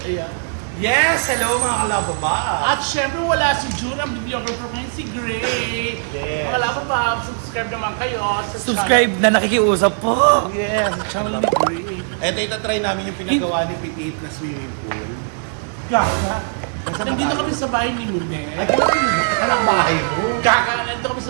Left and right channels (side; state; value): left; silent; digital silence